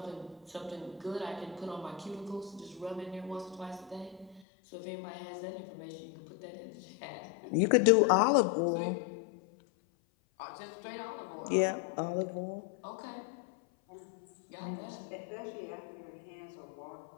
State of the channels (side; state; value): right; drops out; at 4.4 s